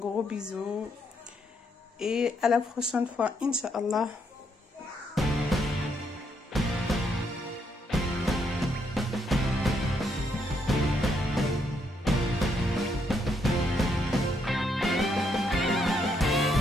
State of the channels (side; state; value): both; normal; correlation 0.75